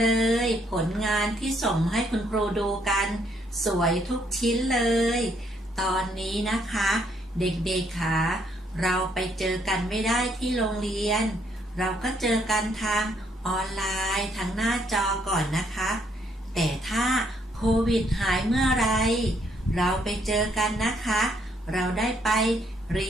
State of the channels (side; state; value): both; normal; correlation 0.70